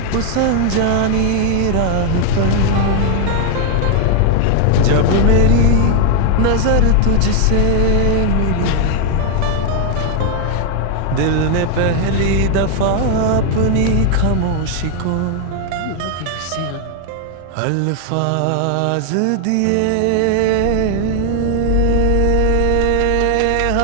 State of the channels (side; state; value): both; different; correlation 0.00